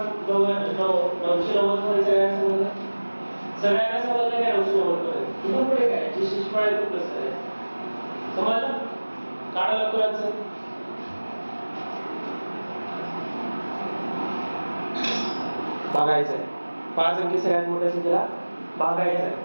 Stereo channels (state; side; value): inverted; both; correlation -1.00